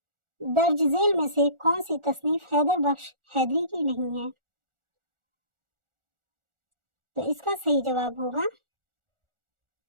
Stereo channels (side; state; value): left; late; 1.4 ms